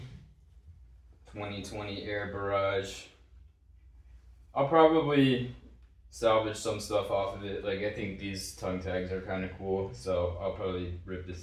2020 Air Barrage. I'll probably salvage some stuff off of it. Like, I think these tongue tags are kind of cool, so I'll probably rip the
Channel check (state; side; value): identical; both; correlation 1.00